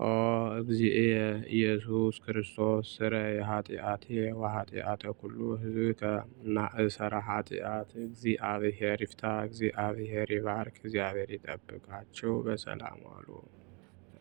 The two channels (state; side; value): quieter; left; 32.3 dB